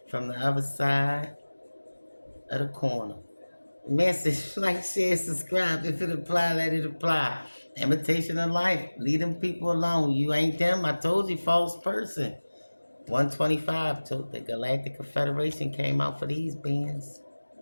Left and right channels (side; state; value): both; inverted; correlation -1.00